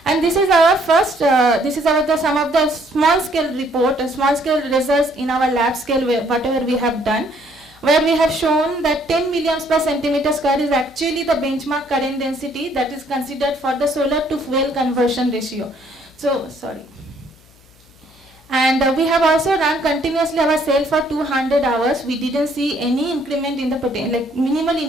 And this is our first, some of the small scale report, small scale results in our lab scale, whatever we have done, where we have shown that 10 milliamps per centimeter square is actually the benchmark current density that is considered for the solar to fuel conversion ratio. So, sorry. And we have also run continuously our cell for 200 hours. We didn't see any increment in the potential, like minimal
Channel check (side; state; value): left; noise; hum, 29 dB below the sound